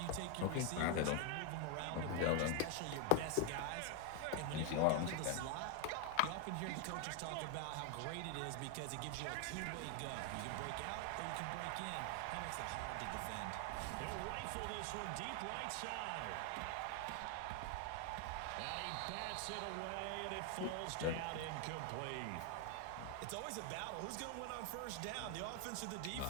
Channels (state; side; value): different; both; correlation 0.00